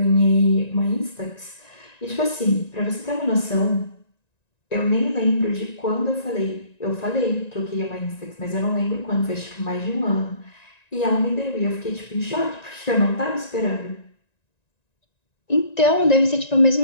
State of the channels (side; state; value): right; late; 1.9 ms